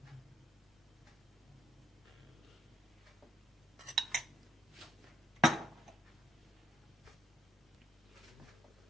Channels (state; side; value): normal; both; correlation 0.66